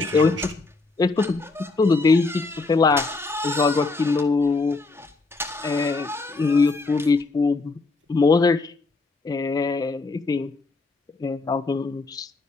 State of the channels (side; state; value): right; quieter; 3.7 dB